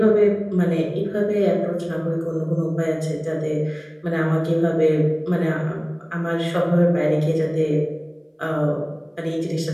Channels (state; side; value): identical; both; correlation 1.00